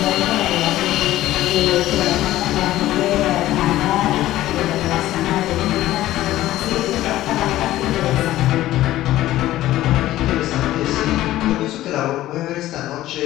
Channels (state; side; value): quieter; right; 14.9 dB